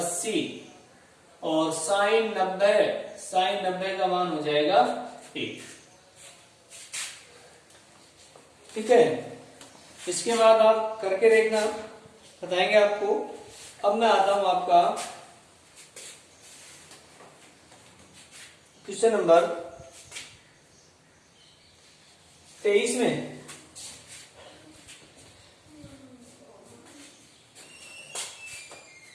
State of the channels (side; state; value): both; identical; correlation 1.00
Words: और साइन 90, साइन 90 का मान हो जाएगा 1। ठीक है, इसके बाद आप करके देखना, बताएंगे आपको। अब मैं आता हूं आपका क्वेश्चन नंबर 23 में।